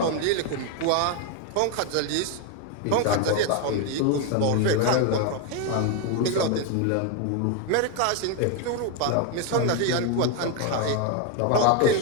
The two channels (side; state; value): both; different; correlation 0.01